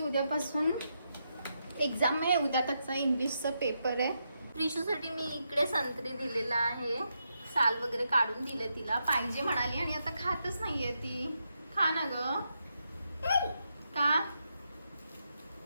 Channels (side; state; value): both; inverted; correlation -0.83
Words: एक्झाम आहे. उद्या त्याचा इंग्लिशचा पेपर आहे. प्रिशूसाठी मी इकडे संत्री दिलेला आहे. साल वगैरे काढून दिले तिला, पाहिजे म्हणाली, आणि आता खातच नाहीये ती. खा ना ग. का